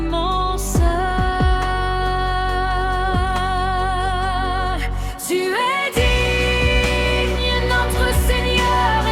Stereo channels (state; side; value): identical; both; correlation 1.00